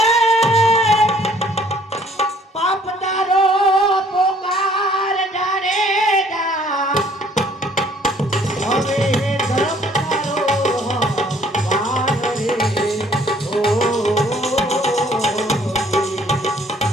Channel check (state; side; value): normal; both; correlation 0.59